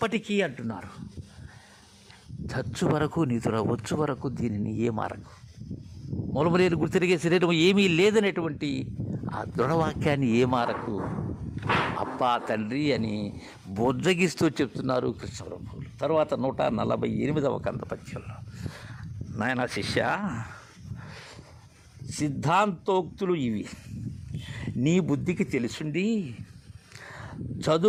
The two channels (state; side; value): identical; both; correlation 1.00